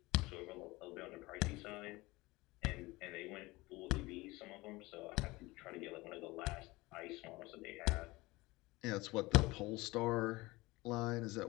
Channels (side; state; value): right; quieter; 21.4 dB